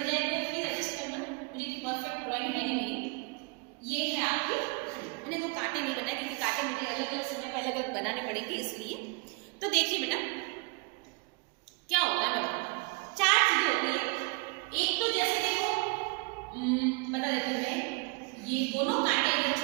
जाए तो प्लीज एडजस्ट करना, मुझे तो परफेक्ट ड्राइंग है नहीं मेरी. ये है आपकी, मैंने तो कांटे नहीं बनाए क्योंकि कांटे मुझे अलग अलग समय पर अलग अलग बनाने पड़ेंगे इसलिए. तो देखिए बेटा क्या होता है, मैं बताऊँ. 4 चीजें होती है. एक तो जैसे देखो बता देती हूँ मैं, ये दोनों कांटे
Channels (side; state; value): left; quieter; 30.3 dB